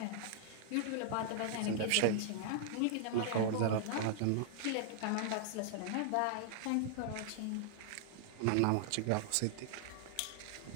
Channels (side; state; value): both; different; correlation -0.01